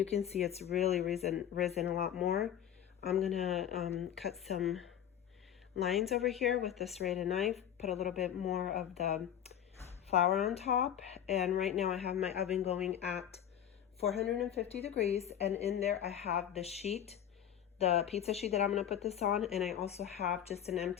can see it's really risen a lot more. I'm gonna cut some lines over here with the serrated knife, put a little bit more of the flour on top, and right now I have my oven going at 450 degrees, and in there I have the sheet, the pizza sheet that I'm gonna put this on, and I also have just an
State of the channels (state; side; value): quieter; right; 10.0 dB